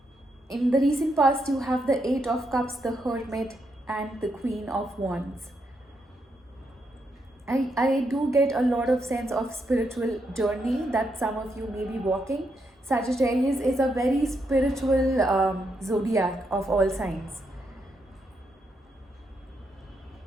In the recent past, you have the Eight of Cups, the Hermit, and the Queen of Wands. I do get a lot of sense of spiritual journey that some of you may be walking. Sagittarius is a very spiritual zodiac of all signs.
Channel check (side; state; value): both; normal; correlation 0.80